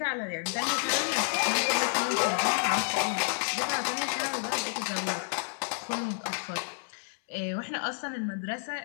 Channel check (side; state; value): right; silent; 58 dB below the other